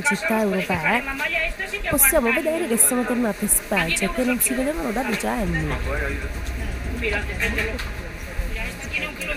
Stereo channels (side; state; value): both; identical; correlation 1.00